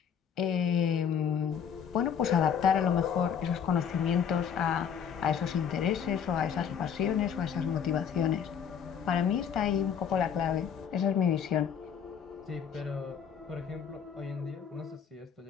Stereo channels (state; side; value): quieter; right; 7.7 dB